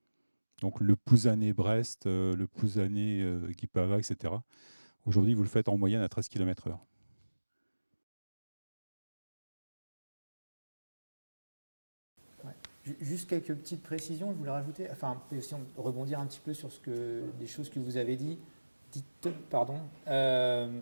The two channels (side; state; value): both; inverted; correlation -1.00